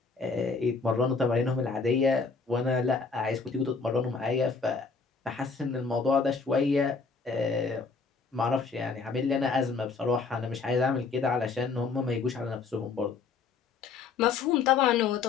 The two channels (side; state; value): right; quieter; 4.8 dB